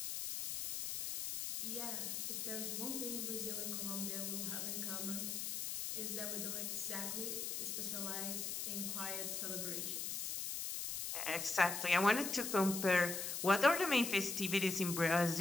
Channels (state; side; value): noise; left; hiss, 3 dB below the sound